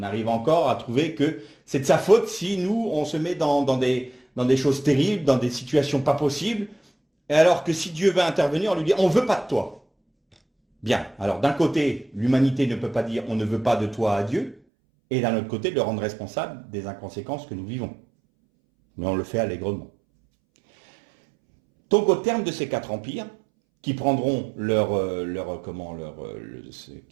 arrive encore à trouver que c'est de sa faute si nous, on se met dans des choses terribles, dans des situations pas possibles, et alors que si Dieu veut intervenir, on lui dit « on ne veut pas de toi ». Bien, alors d'un côté, l'humanité ne peut pas dire « on ne veut pas de toi à Dieu », et d'un autre côté, le rendre responsable des inconséquences que nous vivons. Mais on le fait allègrement. Donc au terme de ces 4 empires, qui prendront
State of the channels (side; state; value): left; drops out; at 14.6 s